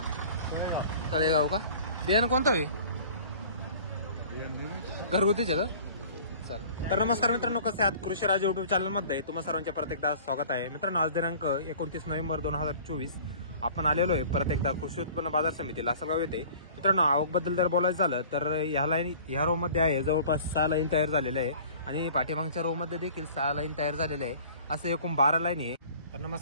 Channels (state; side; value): inverted; both; correlation -0.47